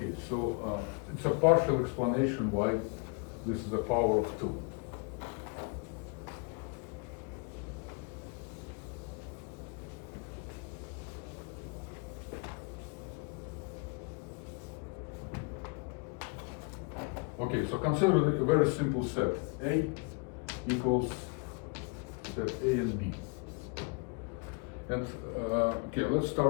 so it's a partial explanation why this is a power of 2. Okay, so consider a very simple set. A equals set A and B. And okay, let's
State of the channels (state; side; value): quieter; right; 32.6 dB